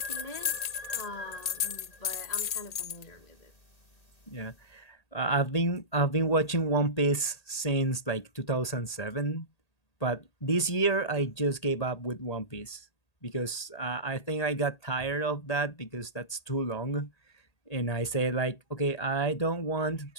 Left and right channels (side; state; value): right; late; 1.8 ms